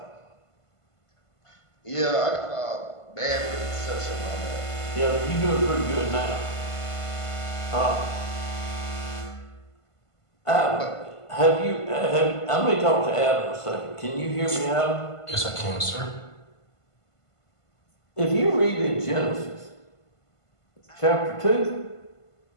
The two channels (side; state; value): right; late; 1.5 ms